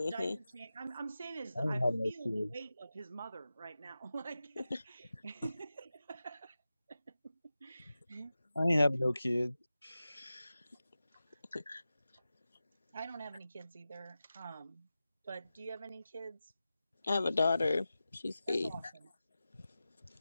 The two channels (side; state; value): both; inverted; correlation -0.94